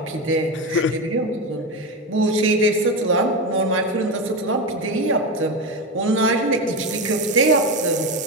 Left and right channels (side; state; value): both; normal; correlation 0.17